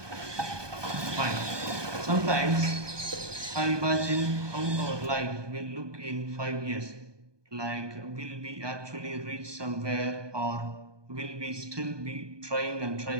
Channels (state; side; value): late; left; 1.2 ms